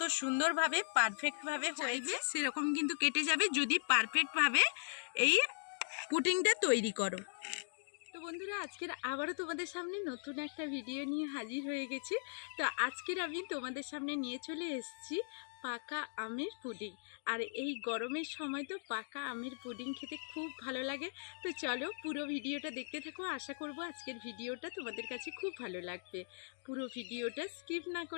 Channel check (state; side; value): silent; right; digital silence